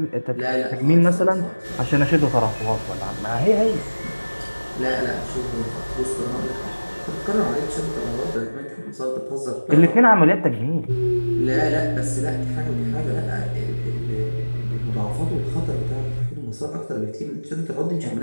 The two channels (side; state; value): both; inverted; correlation -1.00